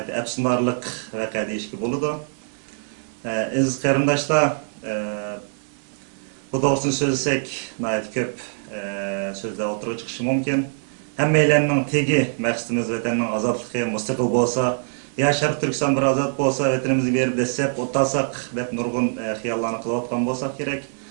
əfsunarlıq vəqə deyişki boludu. Aziz qarindoshlar, bu doğrusunu söylesek nəhayət köp sözler oturuğa çıkışı mümkün. Həmmeylərinin tegi məqsədimiz vətəninin azadlığı müstəqil bolsa, ya Şərq Türkistan bir azad bolsa, vətənimizi berib desep, otasaq, dep nurgun xiyallarını qılıb atqan bolsaq gerek.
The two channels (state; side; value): silent; left; digital silence